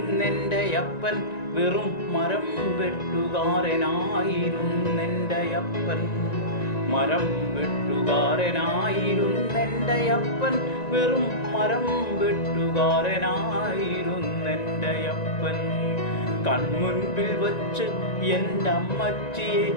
അപ്പൻ, വെറും മരം വെട്ടുകാരനായിരുന്നെൻ്റെ അപ്പൻ. മരം വെട്ടുകാരനായിരുന്നെൻ്റെ അപ്പൻ, വെറും മരം വെട്ടുകാരനായിരുന്നെൻ്റെ അപ്പൻ. കൺമുൻപിൽ വച്ച് എൻ്റെ അമ്മച്ചിയെ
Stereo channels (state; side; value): late; right; 1.9 ms